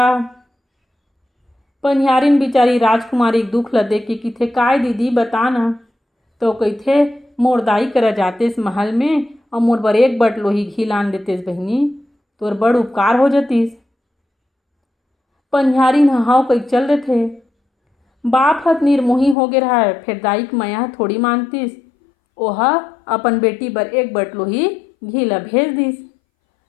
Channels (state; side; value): drops out; right; at 19.4 s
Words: पनिहारिन बिचारी राजकुमारी के दुख ल देख के कइथे काय दीदी बता न। तो कइथे मोर दाई करा जातेस महल में और मोर बर एक बट लोही घी लान देतेस बहिनी तोर बड़ उपकार हो जतिस। पनिहारिन हाव कई चल देथे। बाप हत निर्मोही हो गे रहा, फिर दाई के माया थोड़ी मानतिस। ओहा अपन बेटी बर एक बट लोही घी ल भेज दिस।